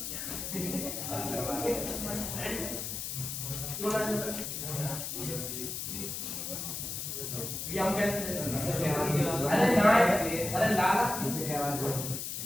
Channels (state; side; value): noise; left; hiss, 5 dB below the sound